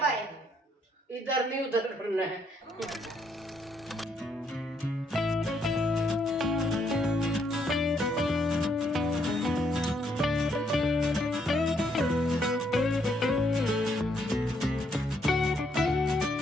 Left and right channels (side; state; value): both; normal; correlation 0.73